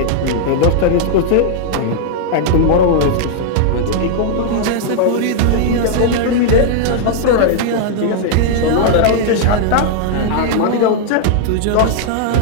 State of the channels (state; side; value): different; both; correlation -0.01